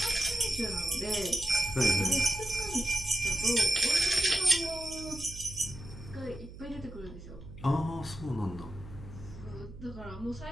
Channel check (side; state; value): right; noise; hum, 14 dB below the sound